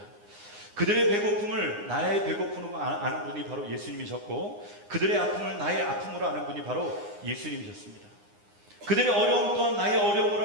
그들의 배고픔을 나의 배고픔으로 아는 분이 바로 예수님이셨고 그들의 아픔을 나의 아픔으로 아는 분이 바로 예수님이셨습니다. 그들의 어려움 또한 나의 어려움으로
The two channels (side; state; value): left; late; 9.7 ms